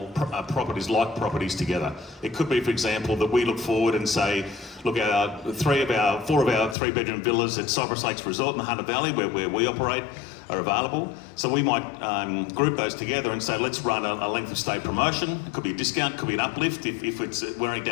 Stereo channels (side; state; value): right; drops out; at 6.8 s